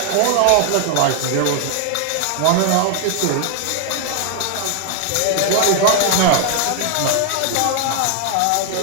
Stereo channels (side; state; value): both; different; correlation 0.00